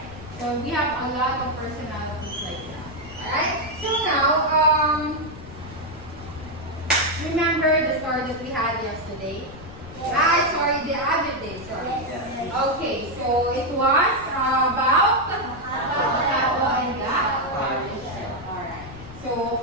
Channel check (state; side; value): noise; left; rumble, 16 dB below the sound